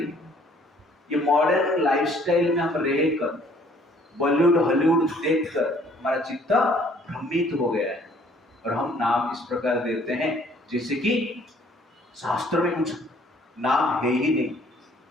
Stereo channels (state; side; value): normal; both; correlation 0.59